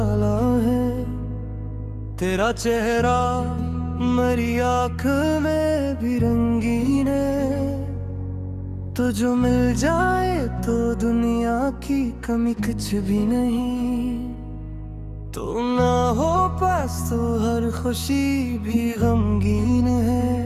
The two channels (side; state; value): both; identical; correlation 1.00